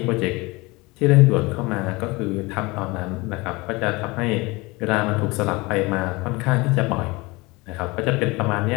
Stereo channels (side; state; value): right; quieter; 23.8 dB